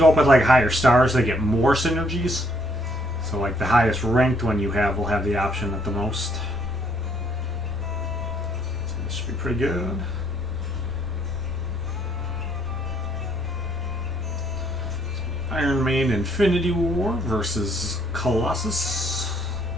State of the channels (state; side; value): normal; both; correlation 0.68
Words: up with like higher stars, they get more synergies. So like the highest ranked one you have will have the option at the most. So this should be pretty good. Iron Man Infinity War versus Colossus.